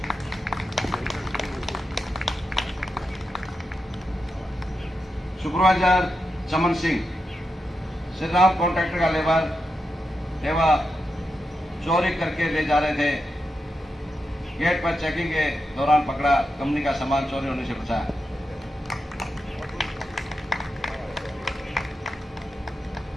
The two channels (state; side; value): normal; both; correlation 0.88